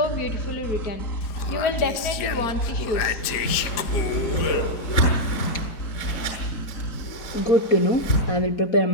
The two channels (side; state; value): right; late; 4.9 ms